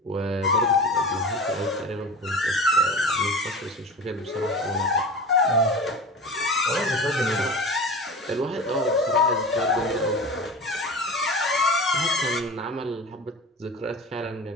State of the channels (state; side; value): normal; both; correlation 0.33